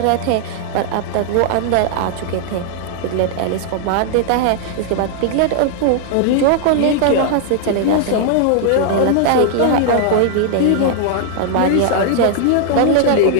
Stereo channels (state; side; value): different; both; correlation -0.01